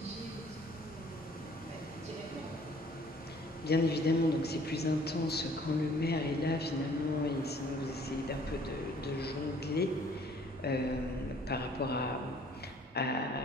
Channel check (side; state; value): both; normal; correlation 0.57